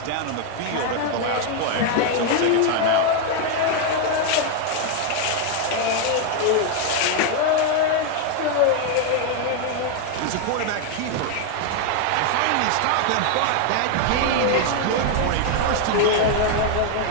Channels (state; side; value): different; both; correlation 0.01